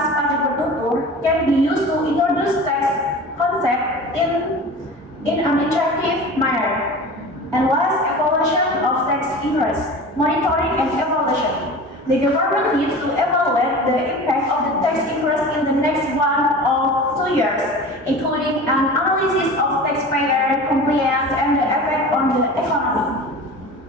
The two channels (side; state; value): both; normal; correlation 0.36